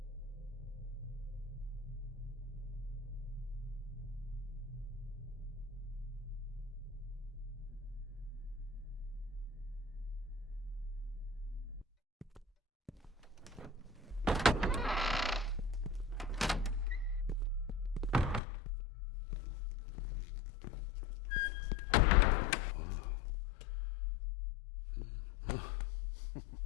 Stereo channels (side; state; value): right; drops out; at 18.4 s